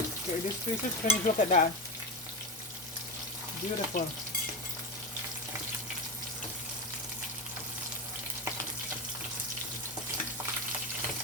okay, this piece is finished. Look at that. Beautiful.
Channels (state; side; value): normal; both; correlation 0.17